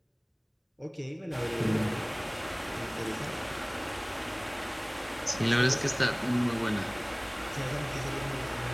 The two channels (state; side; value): identical; both; correlation 1.00